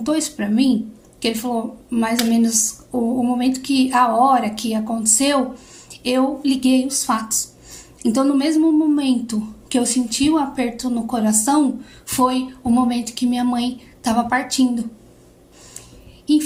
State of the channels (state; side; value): identical; both; correlation 1.00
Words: isso pra mim, que ele falou mais ou menos o momento a hora que aconteceu, eu liguei os fatos. Então no mesmo momento que eu senti o aperto no coração, foi o momento que minha mãe estava partindo.